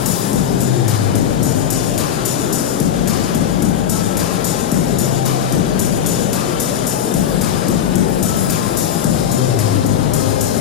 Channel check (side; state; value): right; quieter; 9.2 dB